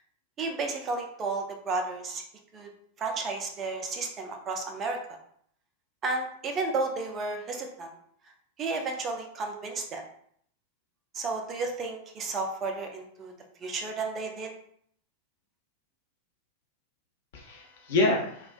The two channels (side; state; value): both; normal; correlation 0.19